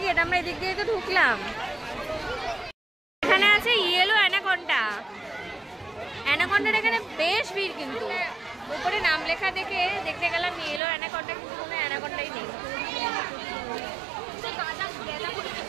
গেট, আমরা এদিক দিয়ে তো ঢুকলাম। এখানে আছে ইয়েলো অ্যানাকন্ডা। অ্যানাকন্ডার এখানে বেশ ভিড়, কিন্তু উপরে নাম লেখা দেখে দেখতে গেলাম ইয়েলো অ্যানাকন্ডা, কিন্তু কোনো অ্যানাকন্ডাই নেই।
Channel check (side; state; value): left; drops out; at 10.8 s